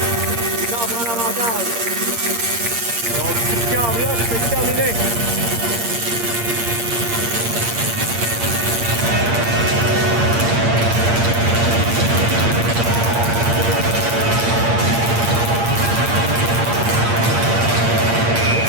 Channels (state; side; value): late; left; 8.6 ms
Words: Il en prend l'avantage. Donc, si le câble là, c'est terminé.